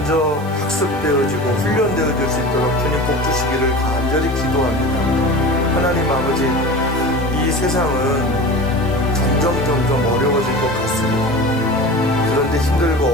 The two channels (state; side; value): noise; right; hiss, 23 dB below the sound